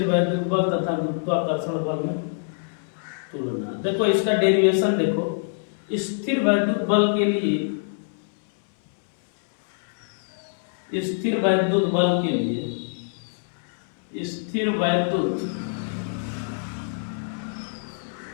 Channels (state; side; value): silent; right; 62 dB below the other